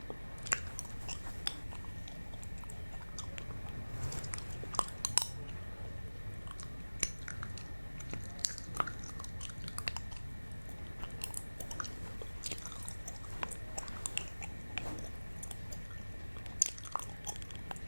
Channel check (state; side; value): inverted; both; correlation -1.00